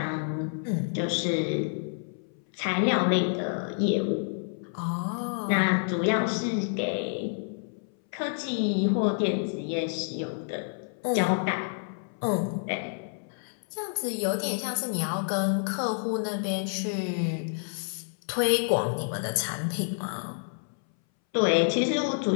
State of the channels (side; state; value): right; silent; 59 dB below the other